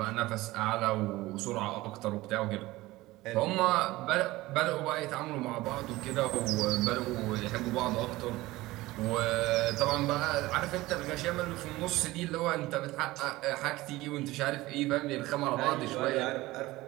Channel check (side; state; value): left; quieter; 18.7 dB